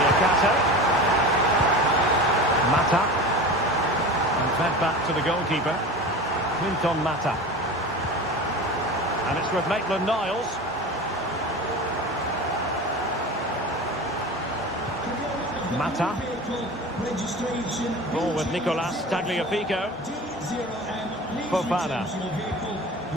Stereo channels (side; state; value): both; normal; correlation 0.32